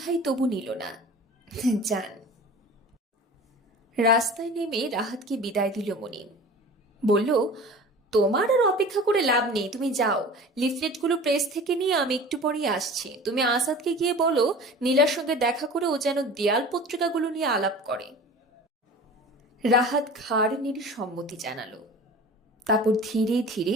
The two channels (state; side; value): normal; both; correlation 0.39